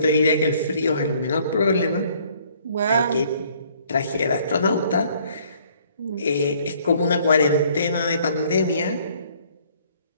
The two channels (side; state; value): both; inverted; correlation -0.61